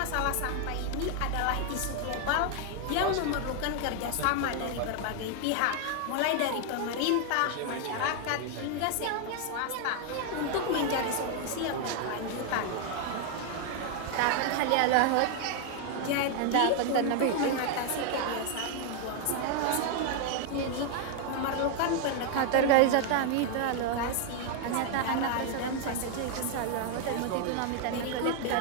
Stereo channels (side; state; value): both; different; correlation 0.00